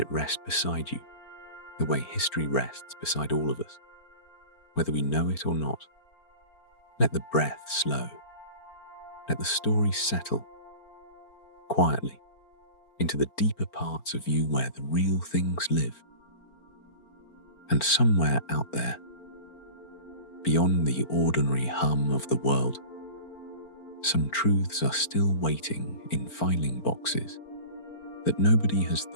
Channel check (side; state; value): right; late; 4.4 ms